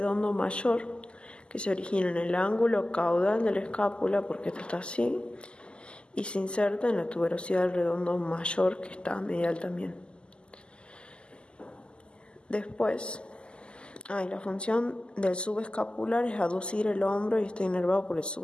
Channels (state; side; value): late; right; 0.050 ms